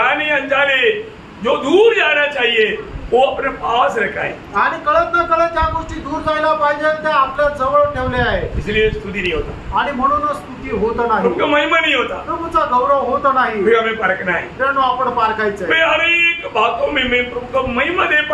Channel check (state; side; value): identical; both; correlation 1.00